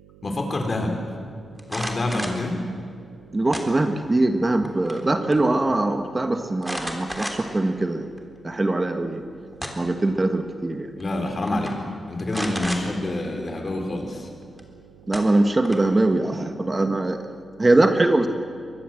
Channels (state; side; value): noise; right; hum, 26 dB below the sound